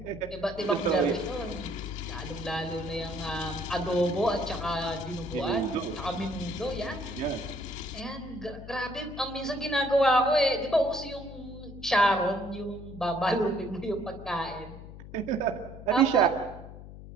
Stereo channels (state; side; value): noise; left; hum, 14 dB below the sound